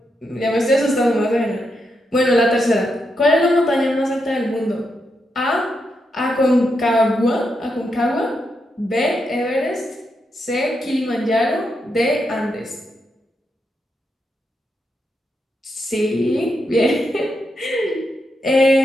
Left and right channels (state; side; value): normal; both; correlation 0.83